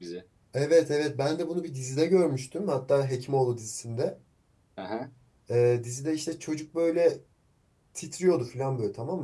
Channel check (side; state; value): both; identical; correlation 1.00